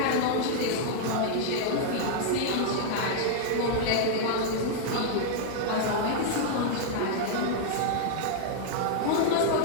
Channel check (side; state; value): both; different; correlation -0.01